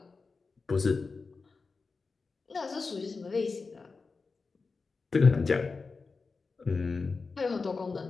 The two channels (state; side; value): quieter; right; 4.3 dB